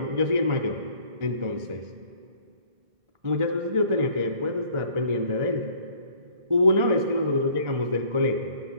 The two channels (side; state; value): left; late; 1.4 ms